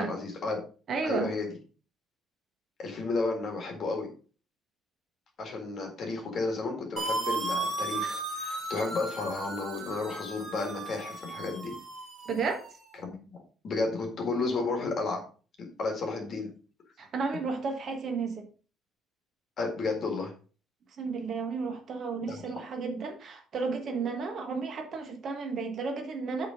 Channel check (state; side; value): normal; both; correlation 0.66